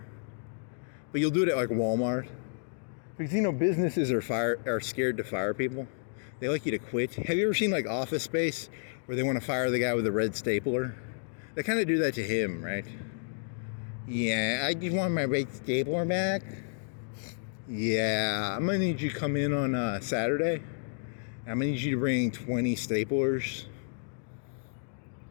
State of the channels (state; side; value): silent; right; digital silence